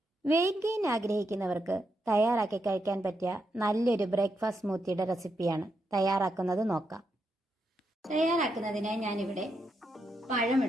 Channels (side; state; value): both; normal; correlation 0.82